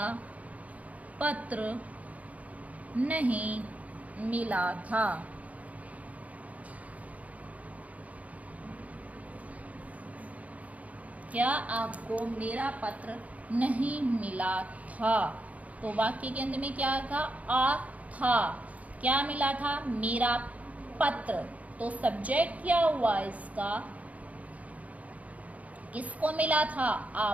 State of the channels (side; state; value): left; late; 0.070 ms